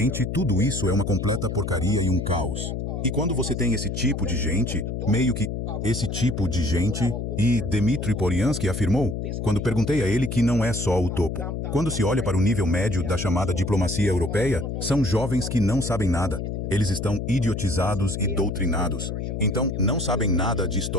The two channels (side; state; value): left; noise; hum, 4 dB below the sound